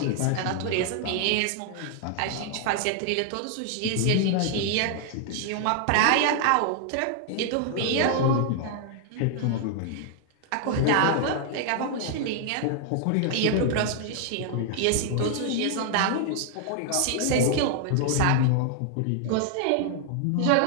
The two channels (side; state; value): both; different; correlation 0.00